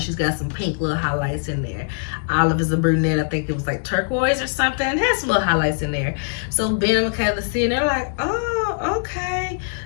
She's got some pink little highlights in there. Olive is a brunette. I think it was like turquoise or something. It has some little highlights in there. So Ben and Michaela see, and they're like, oh, okay,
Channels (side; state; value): right; silent; 64 dB below the other